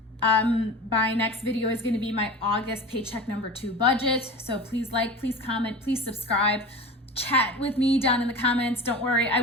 My next video is going to be my August paycheck number 2 budget. So please like, please comment, please subscribe. Chat with me down in the comments. Don't worry, I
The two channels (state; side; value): normal; both; correlation 0.33